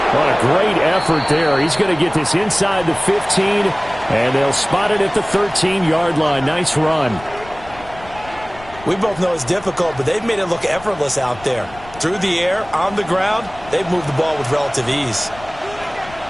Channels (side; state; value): left; noise; rumble, 19 dB below the sound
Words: What a great effort there. He's going to get this inside the 15, and they'll spot it at the 13-yard line. Nice run. We both know it's difficult, but they've made it look effortless out there. Through the air, on the ground, they've moved the ball with relative ease.